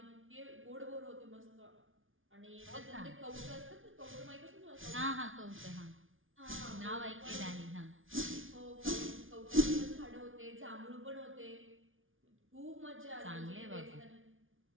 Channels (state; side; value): late; left; 0.58 ms